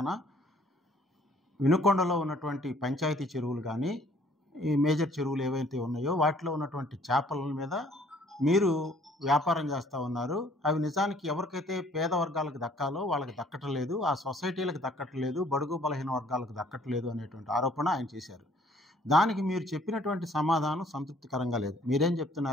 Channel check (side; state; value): both; normal; correlation 0.59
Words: వినుకొండలో ఉన్నటువంటి పంచాయతీ చెరువులు కానీ, ఈ మేజర్ చెరువులు ఏవైతే ఉన్నాయో వాటిలో ఉన్నటువంటి చేపల మీద మీరు వ్యాపారం చేస్తూ ఉన్నారు. అవి నిజానికి ఎవరికైతే పేద వర్గాలకు దక్కాలో వాళ్ళకి దక్కటం లేదు, ఆ సొసైటీలకు దక్కటం లేదు, బడుగు బలహీన వర్గాలకు దక్కటం లేదు అనేటువంటి ఆరోపణ ఆయన చేశారు. దానికి మీరు చెప్పినటువంటి సమాధానం సంతృప్తికరంగా లేదు. మీరేం